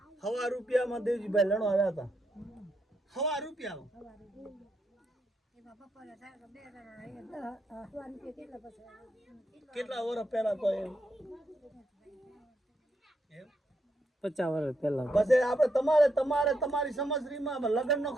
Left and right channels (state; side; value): normal; both; correlation 0.80